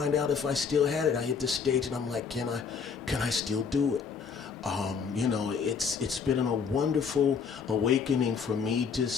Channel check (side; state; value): right; quieter; 6.0 dB